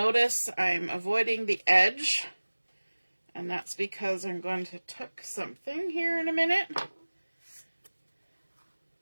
I'm avoiding the edge, and that's because I'm going to tuck something here in a minute.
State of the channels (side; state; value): both; inverted; correlation -1.00